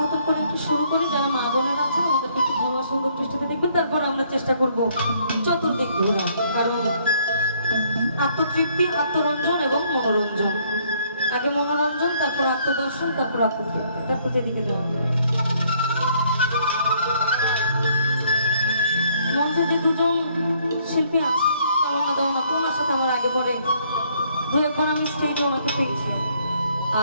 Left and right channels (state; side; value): inverted; both; correlation -0.65